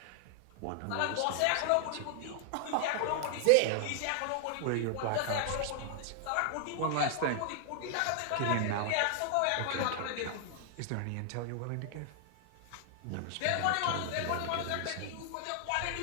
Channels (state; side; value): different; both; correlation 0.00